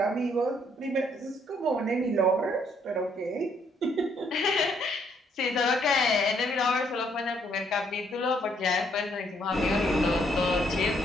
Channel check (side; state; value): both; normal; correlation 0.69